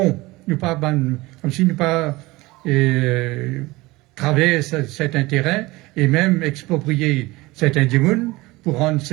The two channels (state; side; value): quieter; left; 21.0 dB